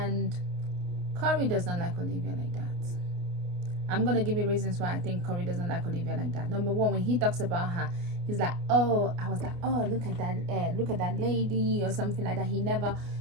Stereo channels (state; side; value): late; left; 29 ms